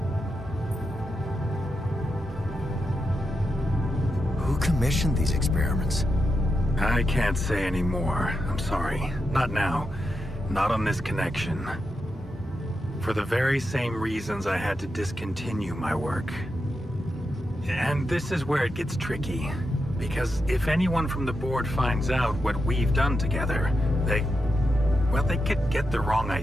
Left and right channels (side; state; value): both; normal; correlation 0.87